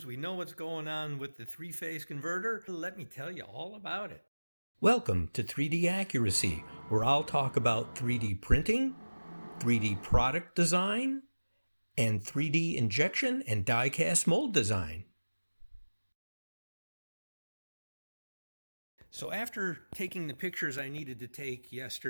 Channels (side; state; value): both; inverted; correlation -1.00